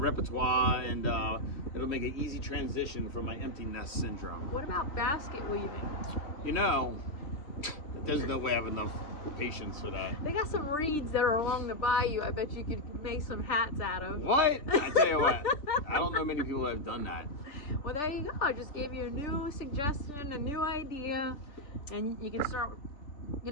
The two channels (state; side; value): late; right; 3.3 ms